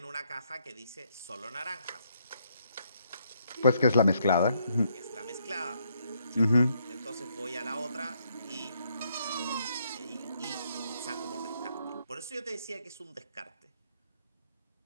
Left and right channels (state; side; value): inverted; both; correlation -0.73